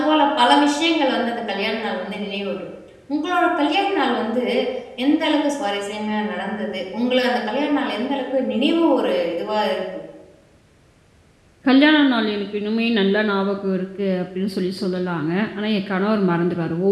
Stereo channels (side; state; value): both; identical; correlation 1.00